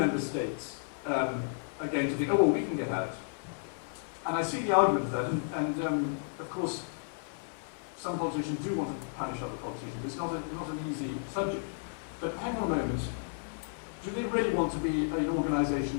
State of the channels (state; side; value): silent; right; digital silence